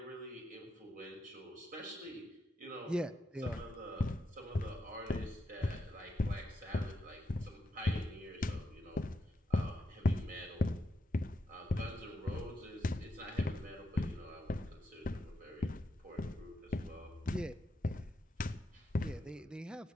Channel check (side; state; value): both; normal; correlation 0.83